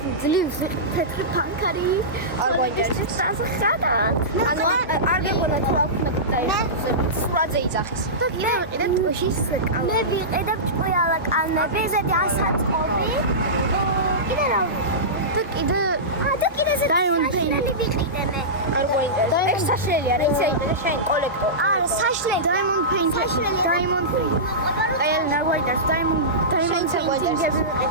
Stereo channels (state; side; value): normal; both; correlation -0.17